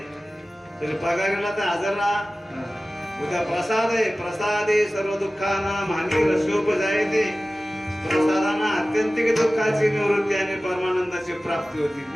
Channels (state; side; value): normal; both; correlation 0.97